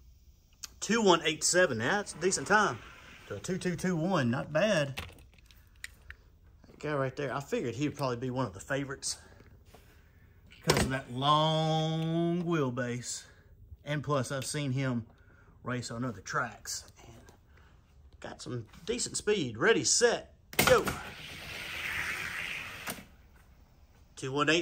2187, that's a decent time. To a 2221, not bad. That guy right there, I figured he'd probably be one of the favorites because of that long wheelbase. And plus, I've seen him race on other tracks. And got some decent speed. Ready, set, go.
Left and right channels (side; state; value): both; identical; correlation 1.00